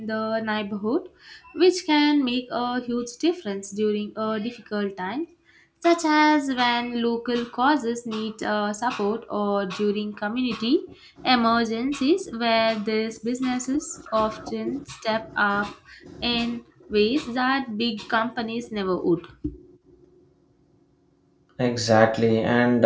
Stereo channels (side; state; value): both; identical; correlation 1.00